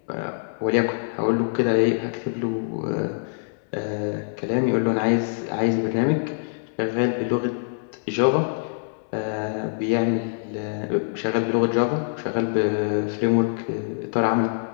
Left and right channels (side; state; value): right; silent; digital silence